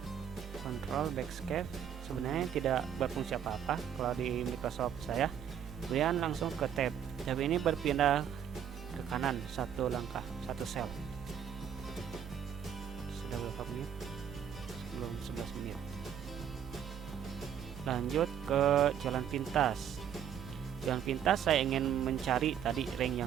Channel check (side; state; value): left; quieter; 9.0 dB